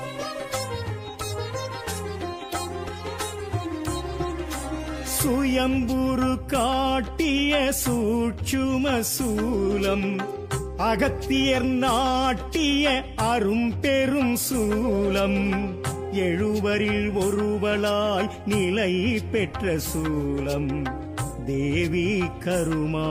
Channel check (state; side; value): identical; both; correlation 1.00